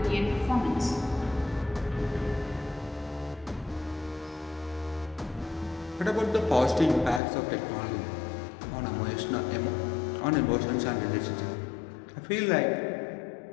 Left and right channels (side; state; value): right; drops out; at 7.2 s